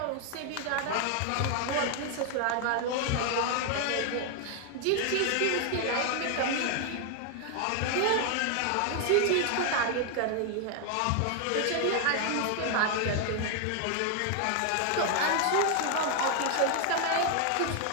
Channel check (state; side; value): different; both; correlation 0.00